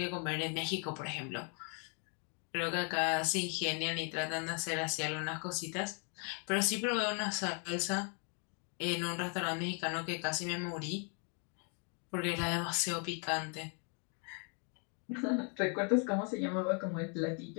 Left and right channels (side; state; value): right; quieter; 39.4 dB